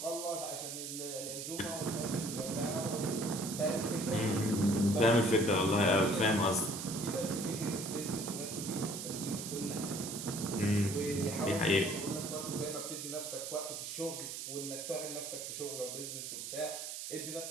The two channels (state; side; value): noise; right; hiss, 6 dB below the sound